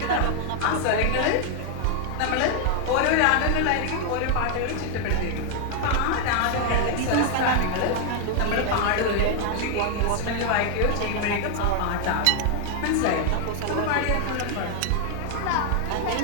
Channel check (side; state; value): both; different; correlation 0.00